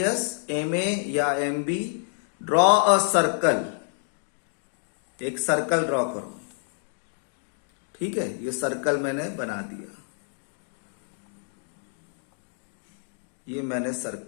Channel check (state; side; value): silent; right; digital silence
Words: M A या M B draw a circle, एक सर्कल ड्रॉ करो। ठीक है, ये सर्कल मैंने बना दिया, ये मैंने